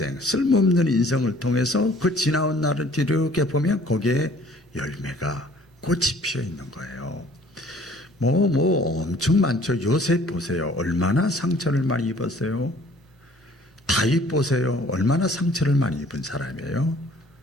쓸모없는 인생을 통해서 그 지나온 날을 뒤로 보면 거기에 열매가, 꽃이 피어 있는 거예요. 엄청 많죠. 요셉 보세요. 얼마나 상처를 많이 입었어요. 다윗 보세요. 얼마나 상처를 많이 입은 사람이에요.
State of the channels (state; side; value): normal; both; correlation 0.55